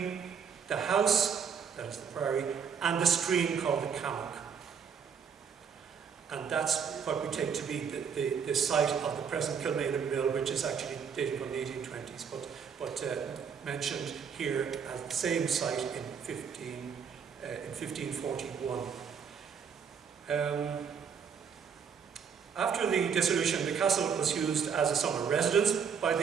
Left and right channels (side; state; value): left; quieter; 6.8 dB